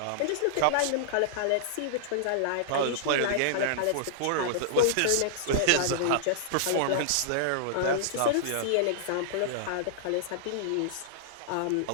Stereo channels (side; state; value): both; different; correlation -0.01